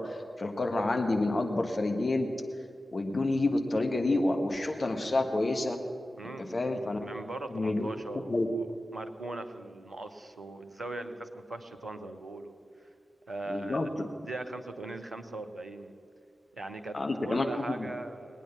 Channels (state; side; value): normal; both; correlation 0.94